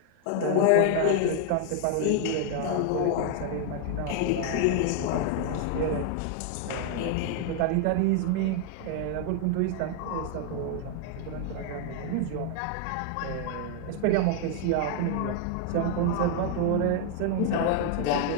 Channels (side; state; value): both; different; correlation 0.00